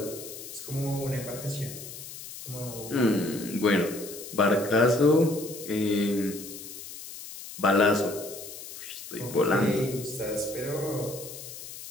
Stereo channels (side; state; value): left; noise; hiss, 12 dB below the sound